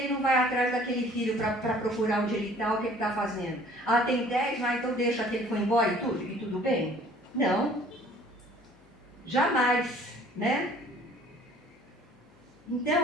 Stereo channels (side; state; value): left; noise; hum, 29 dB below the sound